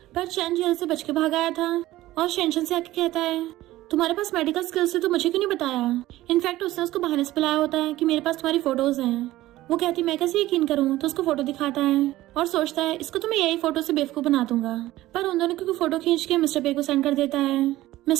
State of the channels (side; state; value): left; quieter; 16.1 dB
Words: पर चैन जेल से बच के भाग आया था और शेंशन से आके कहता है तुम्हारे पास मेडिकल स्किल्स है तो मुझे क्यों नहीं बताया। इनफैक्ट उसने उसको बहाने से बुलाया होता है कि मेरे पास तुम्हारी फोटोज हैं। वो कहती मैं कैसे यकीन करूं, तो उसको फोटो दिखाता है और सोचता है इसको तो मैं यही फोटो से बेवकूफ बना दूंगा। पर उन दोनों की फोटो खींच के मिस्टर पे को सेंड कर देता है।